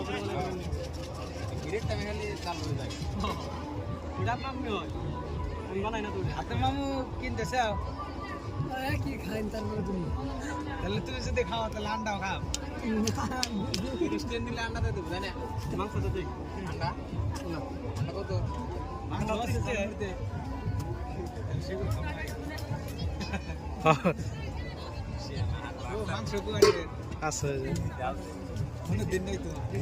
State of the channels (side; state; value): both; identical; correlation 1.00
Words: মামু কিনতেছে কি খাইন তারপরে তুমি তাহলে তুমি যদি খাও তাহলে আন্ডাও খাও রেস্টুরেন্ট দিলে আন্ডা দিয়ে দেবো জানে মাংস তো দিই আন্ডা আন্ডা কত মাংস আছে মাংস কোয়ারে আছে কোনো দিন নেই তো